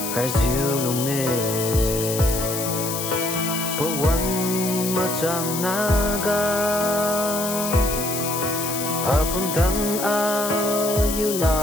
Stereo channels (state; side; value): noise; left; hiss, 5 dB below the sound